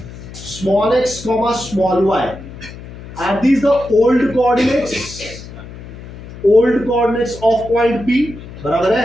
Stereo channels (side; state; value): left; noise; hum, 15 dB below the sound